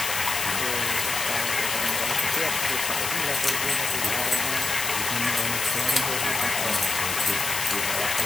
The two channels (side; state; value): left; noise; hiss, 2 dB below the sound